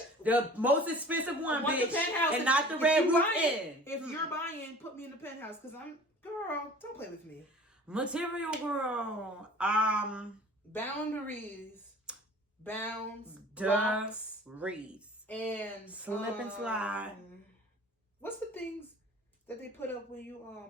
most expensive one, bitch, the penthouse and not the red roof inn. If you're buying, put me in the penthouse, cause girl. Don't play with me. Material girl. Boundaries, bounds, blocks, reeds, and slip and slide. What's the things that they put up when you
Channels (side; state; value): both; normal; correlation 0.45